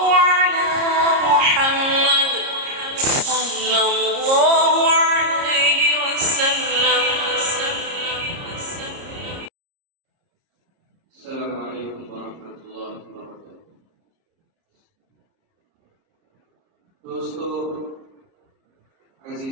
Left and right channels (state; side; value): late; left; 30 ms